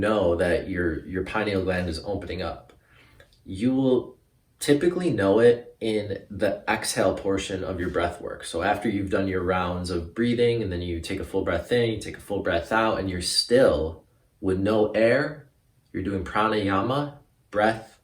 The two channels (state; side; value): identical; both; correlation 1.00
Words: that your pineal gland is opening up? You will typically know it in the exhale portion of your breath work. So after you've done your rounds of breathing and then you take a full breath in, you take a full breath out, and you're still with no air, you're doing pranayama, breath